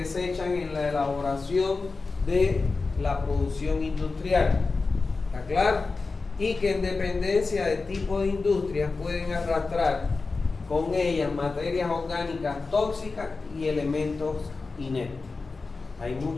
en la elaboración de la producción industrial. ¿Está claro? Y que en dependencia del tipo de industria pueden arrastrar con ellas materias orgánicas tóxicas y elementos inertes. Hay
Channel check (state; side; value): quieter; right; 4.0 dB